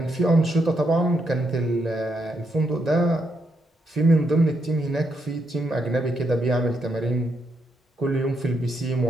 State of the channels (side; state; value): both; normal; correlation 0.79